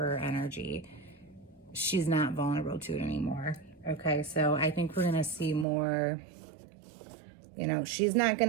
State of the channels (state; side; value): drops out; left; at 5.7 s